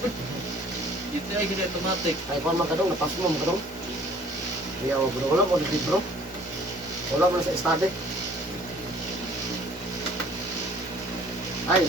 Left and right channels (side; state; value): left; noise; hum, 25 dB below the sound